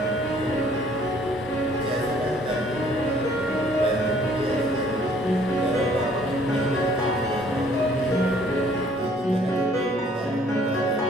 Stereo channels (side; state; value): both; normal; correlation 0.60